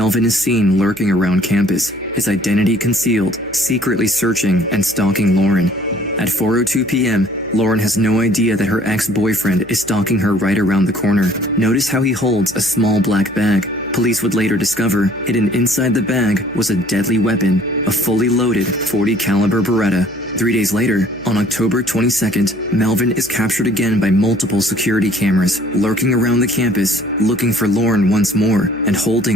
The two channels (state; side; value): noise; right; hum, 23 dB below the sound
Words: is seen lurking around campus, his identity concealed, secretly searching and stalking Lauren. At 4:02 p.m., Lauren has no idea that her ex-boyfriend is stalking her right around the corner. Notice how he holds a small black bag. Police would later discover hidden inside the bag was a deadly weapon, a fully loaded .40 caliber Beretta. 3 days later, on October 22nd, Melvin is captured again by multiple security cameras, lurking around the campus, looking for Lauren once more, and